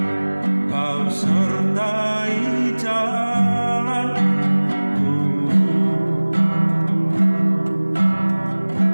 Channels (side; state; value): both; inverted; correlation -1.00